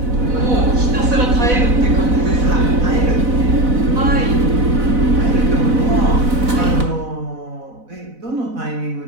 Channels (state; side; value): late; left; 4.0 ms